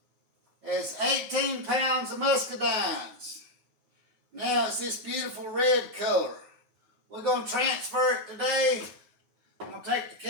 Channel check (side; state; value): left; late; 9.3 ms